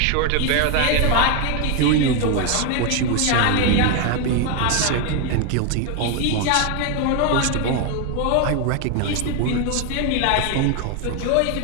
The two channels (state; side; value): different; both; correlation 0.01